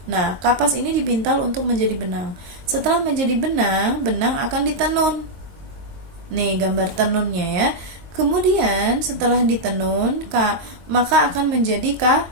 Nah, kapas ini dipintal untuk menjadi benang. Setelah menjadi benang, benang akan ditenun. Nih gambar tenunnya ya. Kemudian setelah ditenun, maka akan menjadi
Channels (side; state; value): left; late; 22 ms